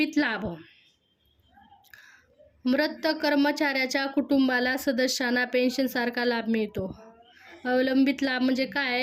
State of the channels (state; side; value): identical; both; correlation 1.00